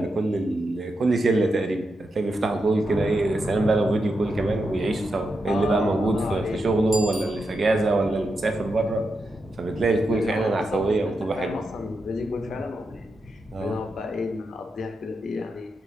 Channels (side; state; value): both; normal; correlation 0.86